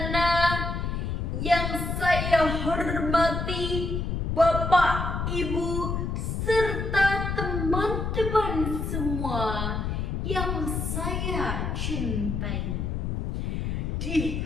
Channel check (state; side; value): noise; left; rumble, 2 dB below the sound